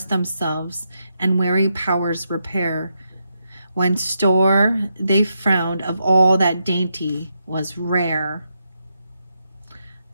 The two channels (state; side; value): inverted; both; correlation -0.82